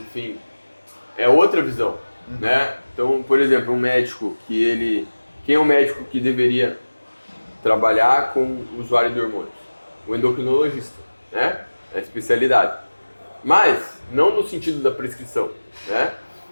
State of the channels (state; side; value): inverted; both; correlation -1.00